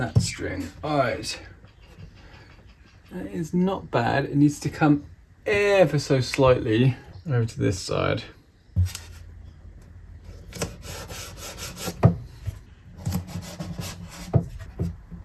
string. All right. That is not bad. It needs to come ever so slightly over to this side.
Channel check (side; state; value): both; identical; correlation 1.00